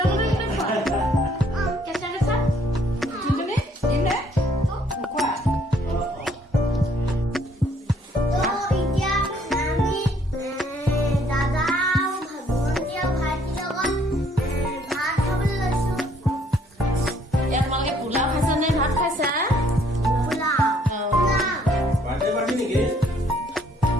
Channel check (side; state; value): both; normal; correlation 0.64